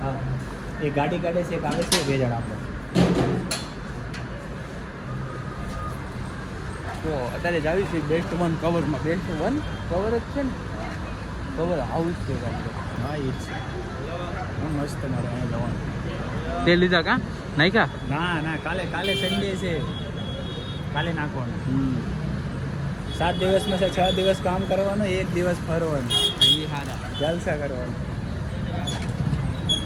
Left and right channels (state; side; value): identical; both; correlation 1.00